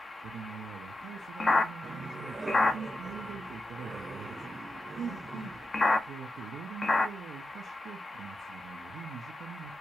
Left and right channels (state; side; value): normal; both; correlation 0.89